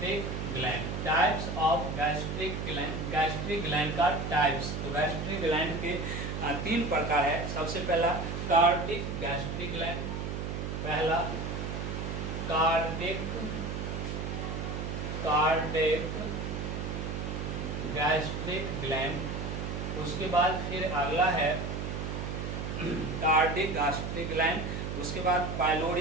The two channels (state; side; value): noise; right; hum, 4 dB below the sound